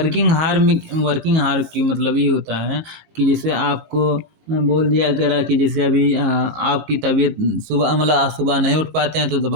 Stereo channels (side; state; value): left; late; 18 ms